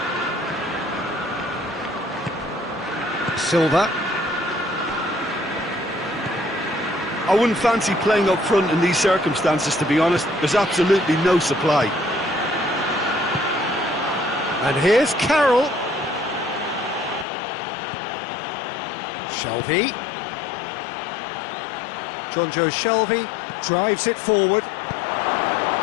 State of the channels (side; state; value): right; drops out; at 17.2 s